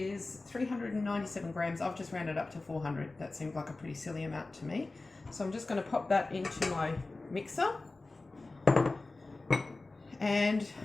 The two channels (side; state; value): right; quieter; 3.3 dB